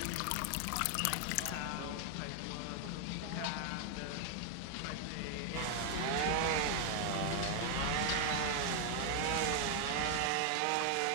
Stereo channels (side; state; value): both; different; correlation 0.00